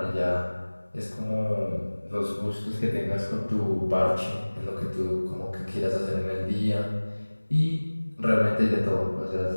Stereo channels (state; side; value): inverted; both; correlation -1.00